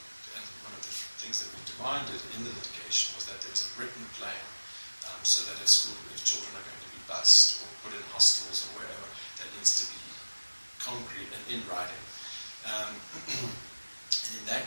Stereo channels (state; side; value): inverted; both; correlation -1.00